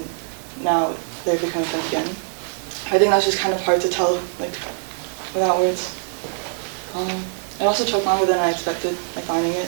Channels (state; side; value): silent; left; digital silence